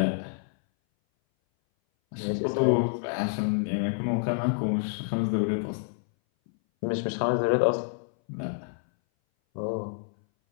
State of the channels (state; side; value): silent; right; 58 dB below the other